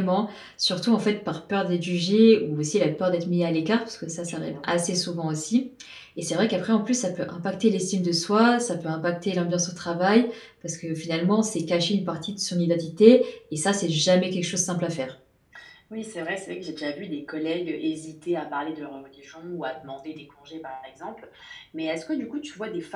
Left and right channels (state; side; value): identical; both; correlation 1.00